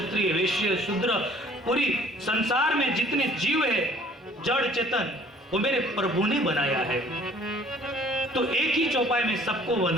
वैश्य शूद्र, पूरी संसार में जितने जीव है जड़ चेतन, वो मेरे प्रभु ने बनाया है। तो एक ही चौपाई में सबको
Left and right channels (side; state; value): both; normal; correlation 0.55